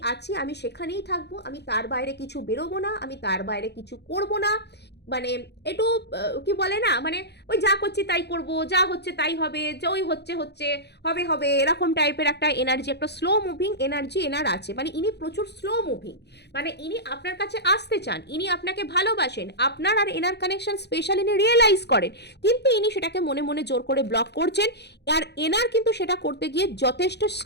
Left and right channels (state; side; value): late; right; 0.49 ms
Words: আছি আমি সেখানেই থাকবো, আমি তার বাইরে কিছু বেরোবো না, আমি তার বাইরে কিছু করবো না। মানে একটু কি বলে না, মানে ওই যা করছি তাই করব, যা হচ্ছে তাই হবে, যে ওই হচ্ছে হচ্ছে হবে হবে, এরকম টাইপের একটা এনার্জি, একটা স্লো মুভিং এনার্জি এনার আছে। মানে ইনি প্রচুর স্লো মুভিং, মানে ইনি আপনার কাছে আসতে চান, ইনি আপনাকে ভালোবাসেন, আপনার আর এনার কানেকশন স্পেশাল ইনি রিয়েলাইজ করেন, কিন্তু ইনি সেটাকে মনে মনে জোর করে ব্লক করছেন। আর এনার কিন্তু সেটা করতে গিয়ে যথেষ্ট